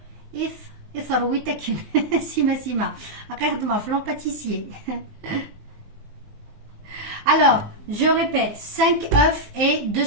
يثرويت أكن سيما أقدم فلان pâtissier. Alors, je répète, 5 œufs et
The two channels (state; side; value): late; left; 19 ms